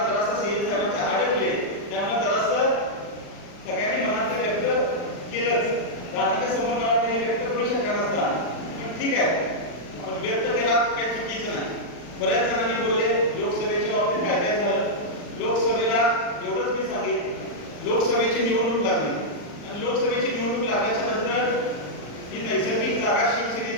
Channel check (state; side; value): late; right; 40 ms